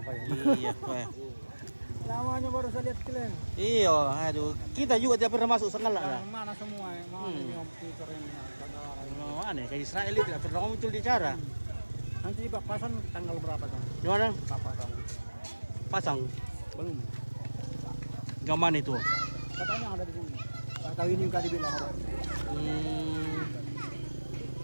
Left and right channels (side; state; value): both; inverted; correlation -1.00